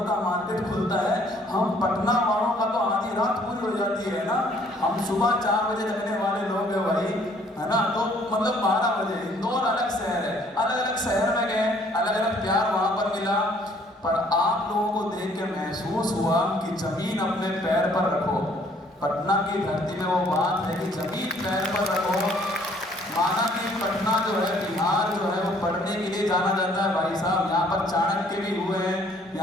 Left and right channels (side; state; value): both; normal; correlation 0.61